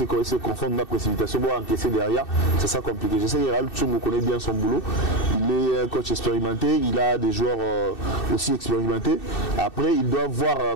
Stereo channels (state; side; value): late; right; 2.6 ms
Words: confondent la précipitation, pour encaisser derrière, c'est ça compliqué. Je sais que Raoul Tchungo connaît bien son boulot, il est un coach expérimenté, il a des joueurs aussi expérimentés. Après, il doit voir